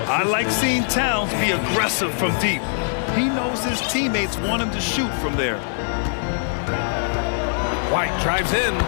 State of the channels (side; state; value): right; silent; digital silence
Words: I like seeing Towns be aggressive from deep. He knows his teammates want him to shoot from there. White drives in,